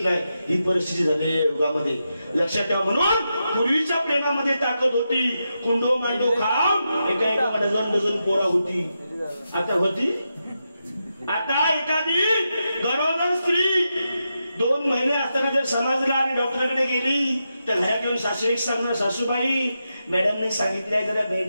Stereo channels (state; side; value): inverted; both; correlation -0.87